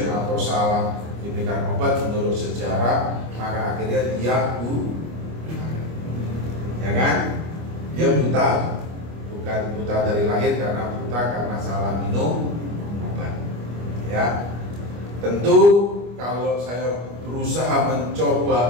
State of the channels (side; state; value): left; late; 25 ms